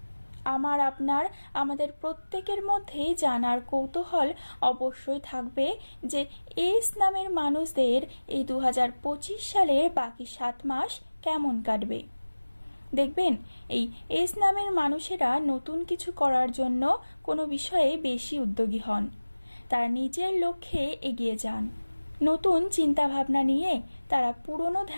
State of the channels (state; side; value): inverted; both; correlation -1.00